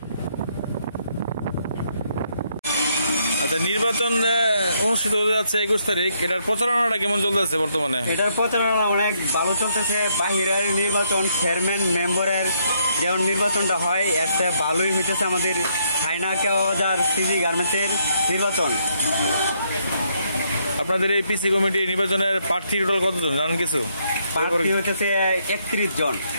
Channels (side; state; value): both; inverted; correlation -0.73